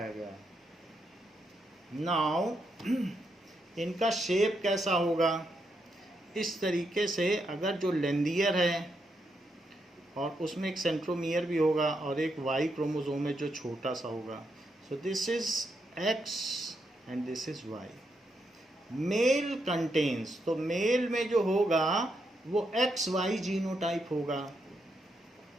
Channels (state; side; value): normal; both; correlation 0.81